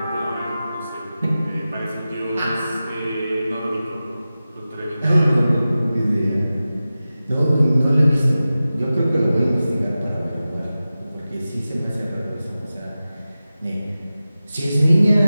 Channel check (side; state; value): both; inverted; correlation -0.95